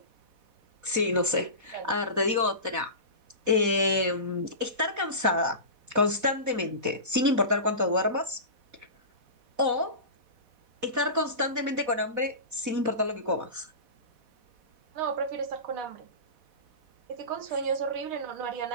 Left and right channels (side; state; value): left; late; 4.1 ms